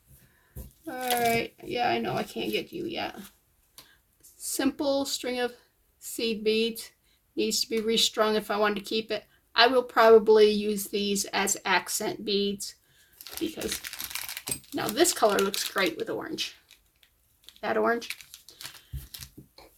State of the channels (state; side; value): identical; both; correlation 1.00